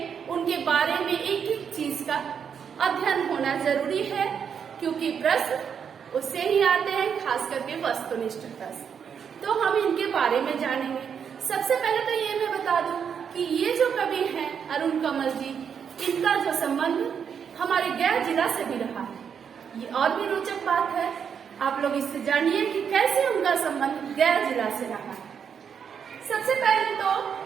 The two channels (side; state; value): left; quieter; 7.3 dB